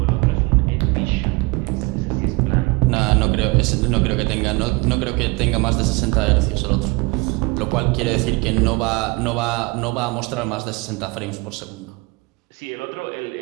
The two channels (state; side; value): quieter; left; 25.2 dB